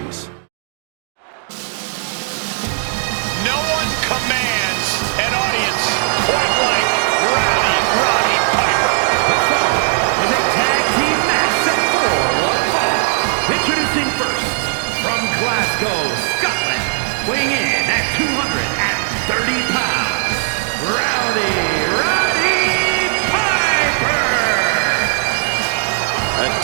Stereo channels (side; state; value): left; silent; digital silence